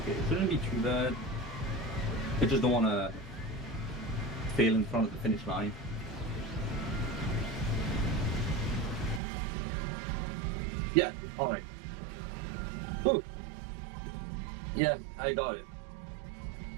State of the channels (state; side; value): drops out; left; at 9.2 s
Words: Okay, it shouldn't be too bad. I just don't want to fail in front of the finish line. Yeah, alright. Ooh. Yeah, I got it.